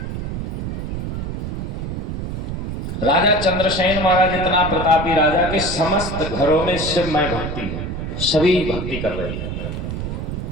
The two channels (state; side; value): noise; right; rumble, 4 dB below the sound